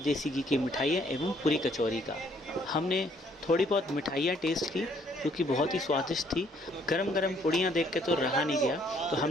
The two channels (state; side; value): normal; both; correlation 0.65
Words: घी की मिठाइयाँ एवं पूरी कचौरी का। हमने थोड़ी बहुत मिठाइयाँ टेस्ट की जो कि बहुत ही स्वादिष्ट थी। गरम गरम पूड़ियाँ देख के तो रहा नहीं गया, तो